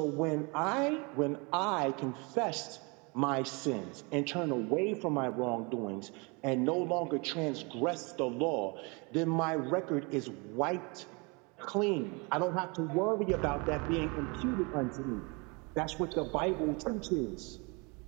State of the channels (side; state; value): left; quieter; 29.8 dB